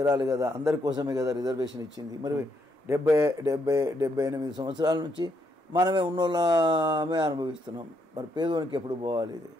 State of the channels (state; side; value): normal; both; correlation 0.76